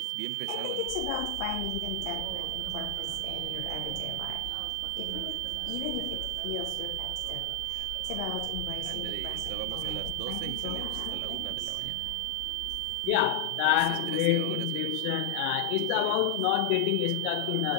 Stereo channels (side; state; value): both; different; correlation 0.00